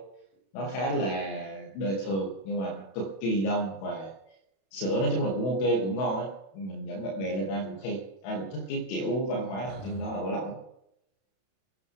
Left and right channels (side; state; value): right; late; 31 ms